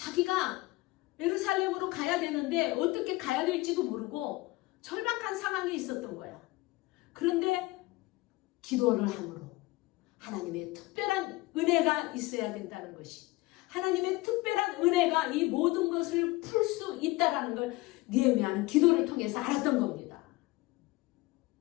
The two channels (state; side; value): quieter; right; 21.0 dB